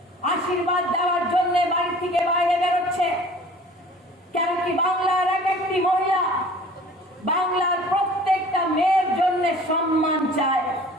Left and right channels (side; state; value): both; normal; correlation 0.47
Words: আশীর্বাদ দেওয়ার জন্য বাড়ি থেকে বাইরে বেরোচ্ছে? কেন কি বাংলার এক একটি মহিলা বাংলার প্রত্যেকটা মেয়ের জন্য সম্মান চায়?